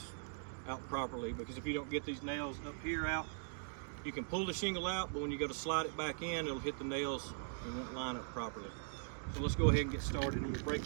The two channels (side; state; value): left; silent; digital silence